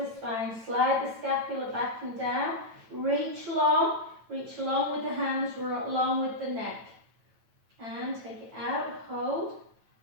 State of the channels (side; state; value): left; late; 9.0 ms